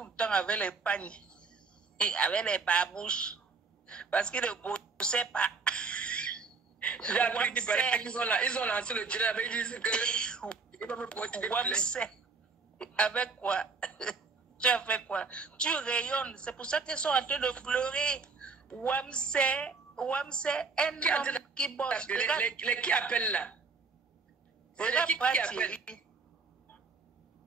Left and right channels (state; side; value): quieter; left; 4.6 dB